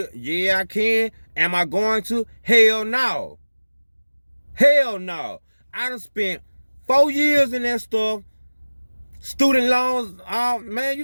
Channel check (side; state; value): both; inverted; correlation -1.00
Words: Yeah, I can. Am I going to? Hell no. Hell no. I done spent 4 years in that stuff. Student loans, man,